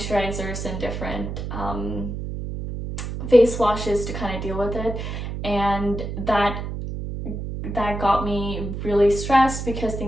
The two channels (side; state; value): right; noise; hum, 5 dB below the sound